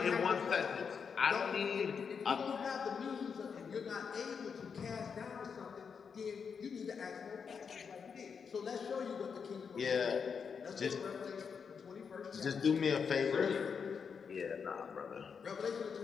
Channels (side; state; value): right; quieter; 6.2 dB